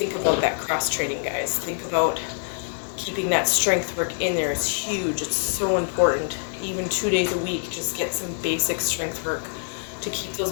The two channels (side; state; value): right; silent; 62 dB below the other